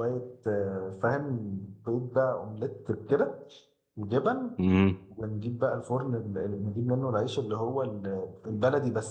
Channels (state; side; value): identical; both; correlation 1.00